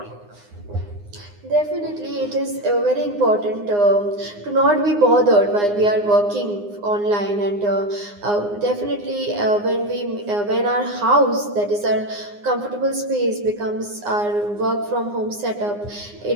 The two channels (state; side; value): late; left; 9.7 ms